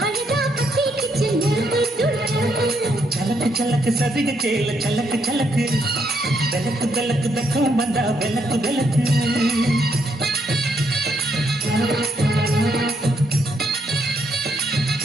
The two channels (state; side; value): normal; both; correlation 0.75